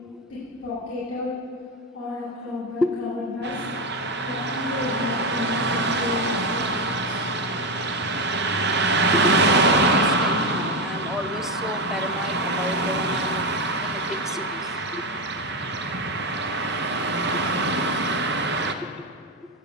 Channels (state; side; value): normal; both; correlation 0.11